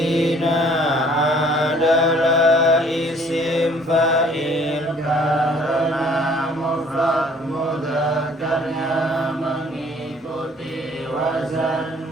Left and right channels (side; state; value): both; normal; correlation 0.57